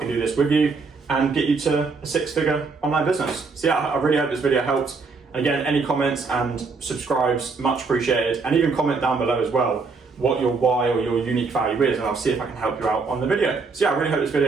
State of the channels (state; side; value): quieter; left; 4.4 dB